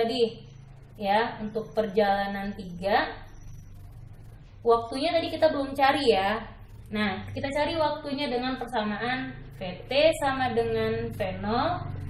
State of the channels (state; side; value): identical; both; correlation 1.00